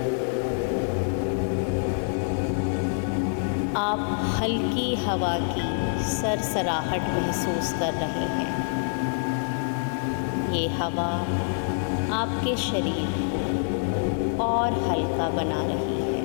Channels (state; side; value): silent; right; digital silence